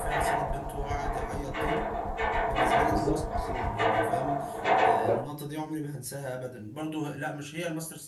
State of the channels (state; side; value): identical; both; correlation 1.00